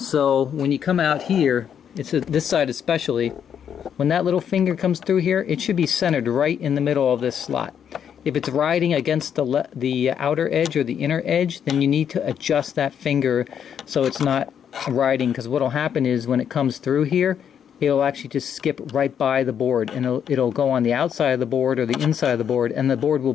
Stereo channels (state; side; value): quieter; right; 8.4 dB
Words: when you come out here, this side especially, when that little finger comes through here, it should be centered right in the middle of this slot. If it's riding against the outer edge or the inner edge, then you need to adjust that finger so it's not riding, because what will happen is when it comes through here, it'll actually just skip right by the board, and it'll go on the outside of the board or the inside of the board, and the board will